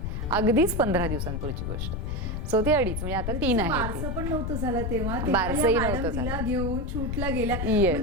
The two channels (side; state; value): left; noise; rumble, 3 dB below the sound